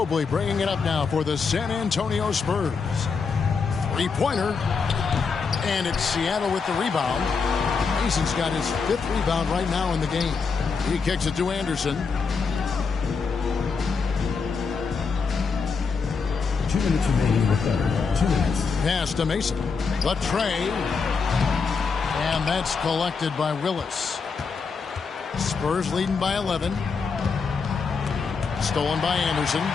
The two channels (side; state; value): right; quieter; 5.2 dB